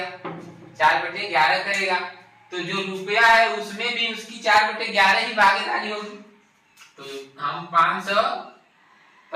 4/11 करेगा। तो जो रुपया है उसमें भी उसकी 4/11 ही भागीदारी होगी। तो हम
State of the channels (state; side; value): identical; both; correlation 1.00